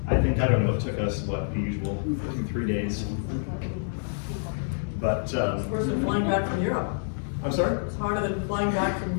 I think, I don't know, it took us, what, the usual 2-3 days. But It's worse than flying back from Europe. I'm sorry? It's harder than flying back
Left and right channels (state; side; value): silent; right; digital silence